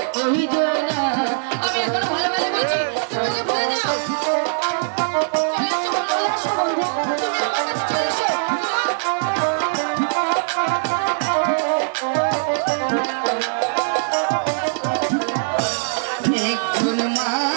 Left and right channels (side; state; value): left; silent; 55 dB below the other